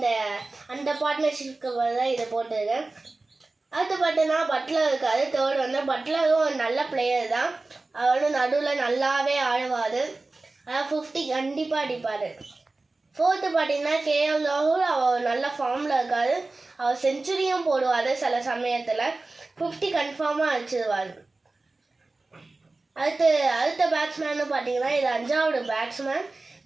அந்த பார்ட்னர்ஷிப்க்கு தான் இதை போட்டிருக்கேன். அடுத்து பார்த்தீங்கன்னா பட்லர் இருக்காரு. தேர்ட் வந்து பட்லரும் ஒரு நல்ல பிளேயர் தான். அவரும் நடுவில் நல்லாவே ஆடுவார். அதாவது 50 கண்டிப்பாக அடிப்பார். ஃபோர்த்து பார்த்தீங்கன்னா கேஎல் ராகுல். அவர் நல்ல ஃபார்மில் இருக்கார். அவர் செஞ்சுரியும் போடுவார். சில சமயத்தில் 50 கன்ஃபார்மாக அடிச்சிடுவார். அடுத்த பேட்ஸ்மேன்னு பார்த்தீங்கன்னா இது 5வது பேட்ஸ்மேன்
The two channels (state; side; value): quieter; left; 3.3 dB